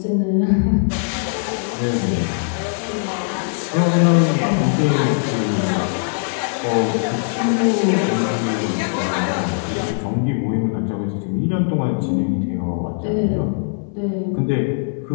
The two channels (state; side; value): silent; right; 66 dB below the other